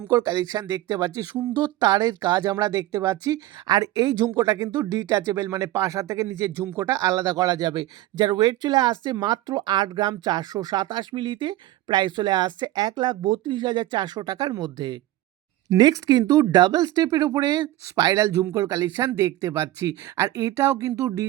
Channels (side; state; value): left; quieter; 15.6 dB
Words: কালেকশন দেখতে পাচ্ছি। সুন্দর তারের কাজ আমরা দেখতে পাচ্ছি। আর এই ঝুমকোটা কিন্তু ডিটাচেবল, মানে পাশা থেকে নিচের ঝুমকোটা আলাদা করা যাবে। যার ওয়েট চলে আসছে মাত্র ৮ গ্রাম ৪২৭ মিলিতে। প্রাইস চলে আসছে ১,৩২,৪০০ টাকার মধ্যে। নেক্সট কিন্তু ডাবল স্টেপের উপরে স্পাইরাল ঝুমকোর কালেকশন দেখতে পাচ্ছি। আর এটাও কিন্তু